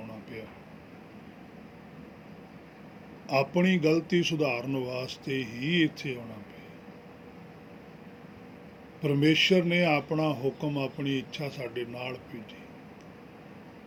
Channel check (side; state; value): both; identical; correlation 1.00